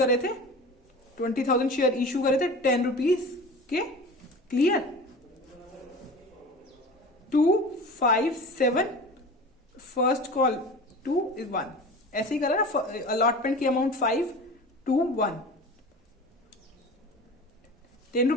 थे, 20,000 शेयर इशू करे थे 10 रुपीज के। क्लियर? 2, 5, 7, फर्स्ट कॉल 2 is 1, ऐसे ही करा ना, अलॉटमेंट की अमाउंट 5, 2, 1, 10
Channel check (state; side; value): normal; both; correlation 0.36